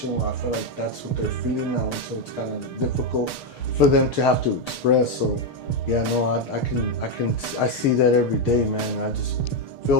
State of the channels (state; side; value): late; right; 6.7 ms